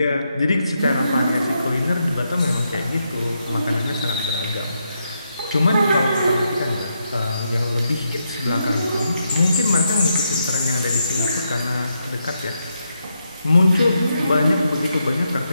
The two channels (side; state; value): both; inverted; correlation -0.82